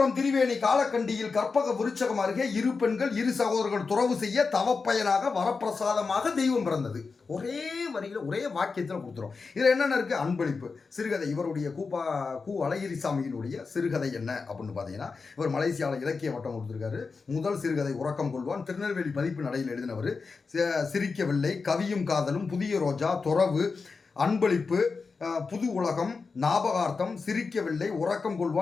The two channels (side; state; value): right; quieter; 4.6 dB